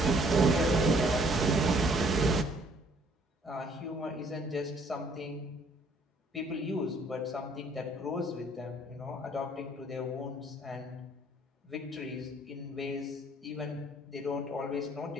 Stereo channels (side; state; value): both; normal; correlation 0.61